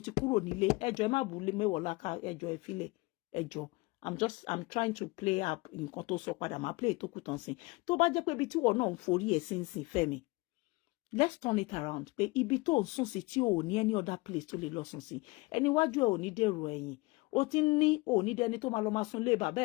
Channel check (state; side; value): quieter; right; 23.9 dB